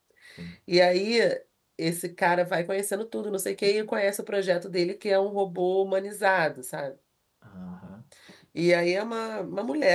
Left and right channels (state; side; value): identical; both; correlation 1.00